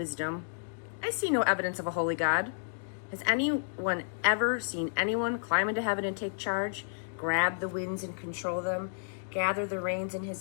I see no evidence of a holy God. Has anyone ever seen anyone climb into heaven and take charge, grab the winds and control them, gather the rains in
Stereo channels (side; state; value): right; silent; digital silence